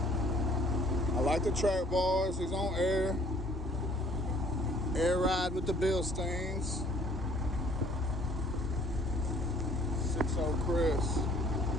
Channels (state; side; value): normal; both; correlation 0.57